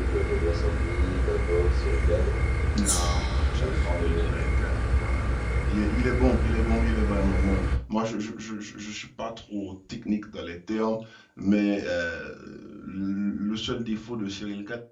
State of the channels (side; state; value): both; identical; correlation 1.00